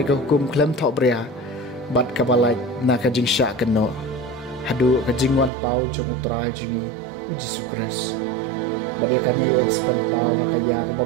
ka hukum klem thok bria bat kabalai na kajing syak keno hadu kajing wan pau jong utrai jingi Jesu Kris Badiakan ia ekspan pau hakaya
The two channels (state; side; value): drops out; left; at 5.5 s